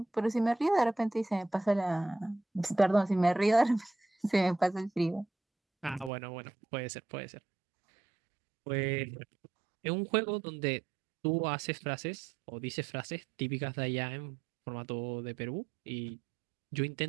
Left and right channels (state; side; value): drops out; left; at 6.1 s